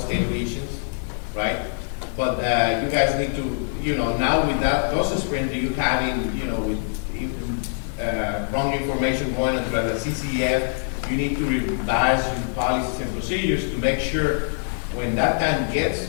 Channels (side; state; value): right; silent; 63 dB below the other